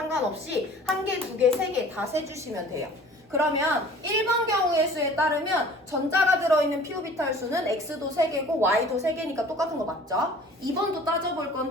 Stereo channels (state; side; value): normal; both; correlation 0.47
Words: 1개, 2개, 3개 다 세주시면 돼요. 그러면 1번 경우의 수에 따르면 전자가 들어있는 p 오비탈 수는 x도 3개고 y도 3개니까 똑같은 거 맞죠? 2번도 따져볼